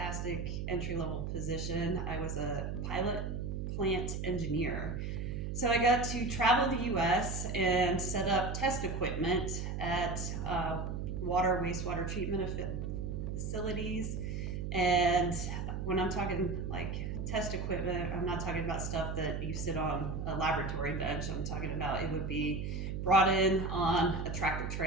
entry level position. I was a pilot plant engineer. So I got to travel the US and set up test equipment at water, wastewater treatment facilities. And when I'm talking like test equipment, I'm not talking about stuff that you sit on a laboratory bench. I'm talking about it would be brought in on a tractor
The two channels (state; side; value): noise; right; hum, 3 dB below the sound